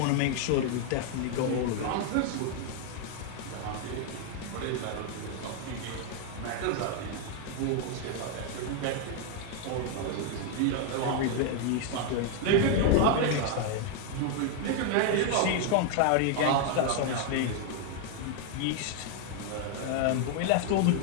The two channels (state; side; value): different; both; correlation 0.00